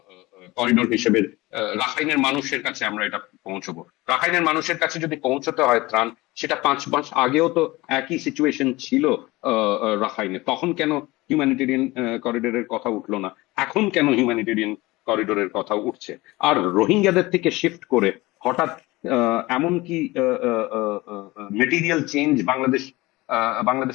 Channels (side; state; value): right; quieter; 20.8 dB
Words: করিডোর হিসেবে রাখাইনের মানুষের কাছে আমরা এটা পৌঁছবো। রাখাইনের মানুষের কাছে যদি পৌঁছতে হয় ত্রাণ, সেটা 5 মাস আগেও তো একই সিচুয়েশন ছিল রাখাইনে, তখন কেন হিউম্যানিটেরিয়ান করিডোরের কথা উঠলো না? এখন কেন হিউম্যানিটেরিয়ান করিডোরের কথা উঠছে? আর রোহিঙ্গাদের থেকে শিফট করে হঠাৎ এমন কি মেটেরিয়াল চেঞ্জ